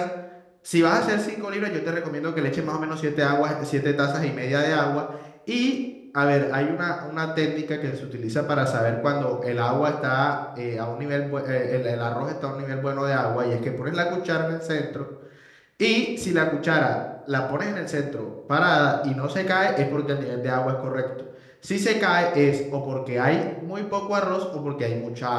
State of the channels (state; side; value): identical; both; correlation 1.00